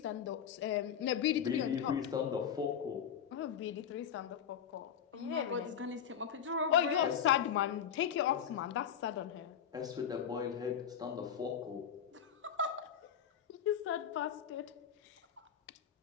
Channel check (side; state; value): right; quieter; 8.5 dB